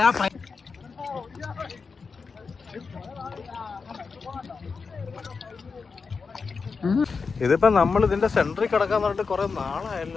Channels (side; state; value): right; quieter; 4.9 dB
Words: ഇതിപ്പോ നമ്മൾ ഇതിന്റെ സെന്ററിൽ കിടക്കാൻ പറഞ്ഞിട്ട് കൊറേ